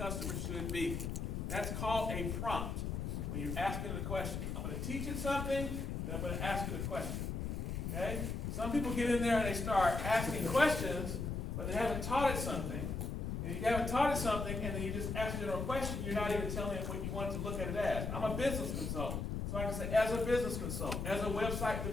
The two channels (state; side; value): noise; left; rumble, 3 dB below the sound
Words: should be. That's called a prompt. When you're asking it a question, I'm going to teach it something, then I'm going to ask it a question. Okay? Some people get in there and they start asking questions, but they haven't taught it something. And if you haven't taught it something, and then you just ask a general question, you're not even telling it what you want to look at it as. I'm a business consultant, so I can say, as a business consultant, as a website